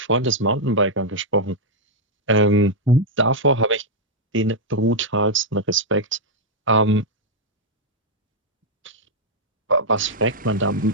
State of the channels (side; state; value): both; normal; correlation -0.04